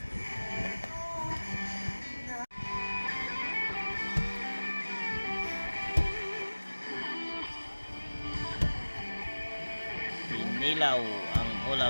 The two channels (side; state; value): both; inverted; correlation -1.00